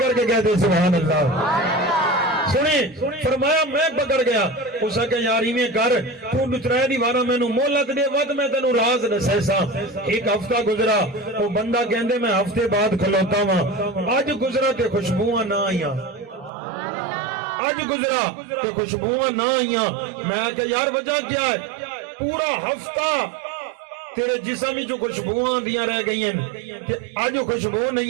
کے کہتے سبحان اللہ سنیں فرمایا میں پکڑ گیا اس کہ یاری میں کر تو نترائے دیوارا میں نو مولت دے ود میں تنو راز نسیسا ایک ہفتہ گزرا وہ بندہ کہندے میں ہفتے بعد کھلوتا ہوں آج گزرا تے خوشبواں نہ آئیاں آج گزرا تے خوشبواں نہ آئیاں میں کہ یار وجہ کیا ہے پورا ہفتہ تیرے جسم جو خوشبواں دیاں رہ گئی ہیں تے آج خوشبو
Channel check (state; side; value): drops out; left; at 16.5 s